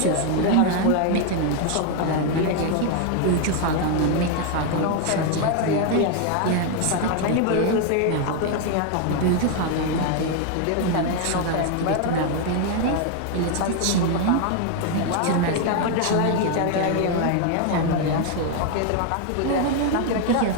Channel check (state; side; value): different; both; correlation 0.01